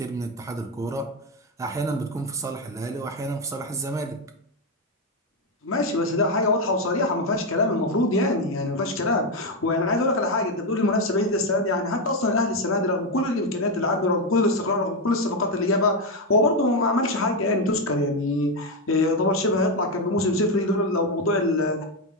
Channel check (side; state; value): both; normal; correlation 0.07